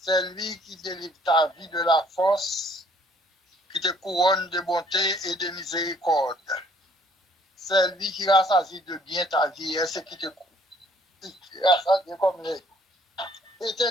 C'est lui qui délivre ta vie de la force, qui te couronne de bonté et de miséricorde. C'est lui qui rassasie de bien ta vie et ce qui te rassasie comme les.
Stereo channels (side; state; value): both; normal; correlation 0.61